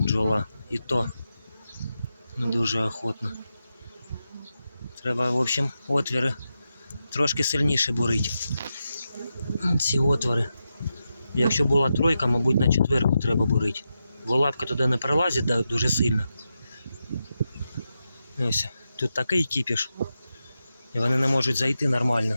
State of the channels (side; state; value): both; inverted; correlation -0.88